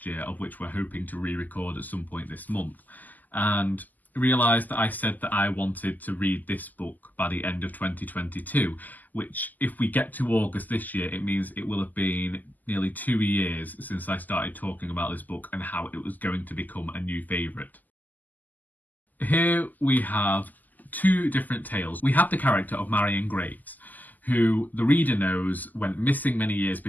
year, of which we're hoping to re-record at some point this month, and realised that I said that I wanted to read this book by the end of 2022, which, if we get to August this year, it means it will have been nearly 2 years since I started talking about this book and how it was going to become a new favourite. Here we have two different tales. We have the character of Marion Graves, who the reader knows went missing many years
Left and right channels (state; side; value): late; right; 0.083 ms